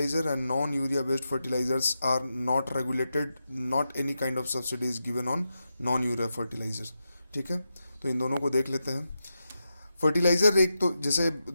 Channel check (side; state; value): both; inverted; correlation -0.88